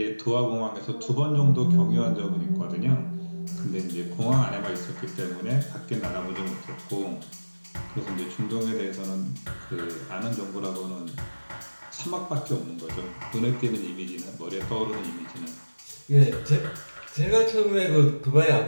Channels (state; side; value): inverted; both; correlation -1.00